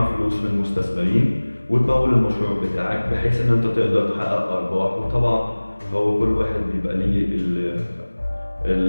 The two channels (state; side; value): inverted; both; correlation -1.00